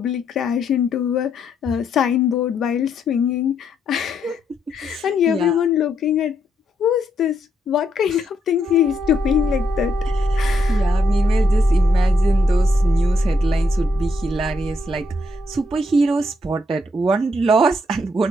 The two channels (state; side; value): normal; both; correlation 0.76